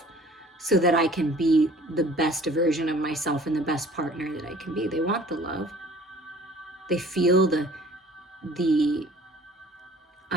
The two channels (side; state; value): both; normal; correlation 0.51